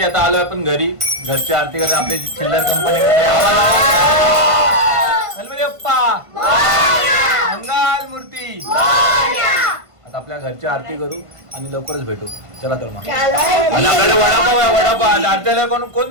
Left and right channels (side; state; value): left; late; 1.5 ms